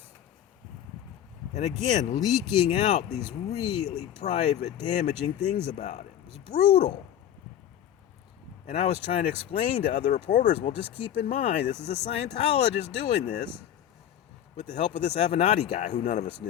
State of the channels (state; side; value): quieter; right; 10.5 dB